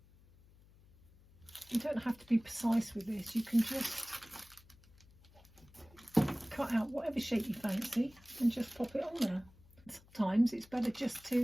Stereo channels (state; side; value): noise; left; hum, 26 dB below the sound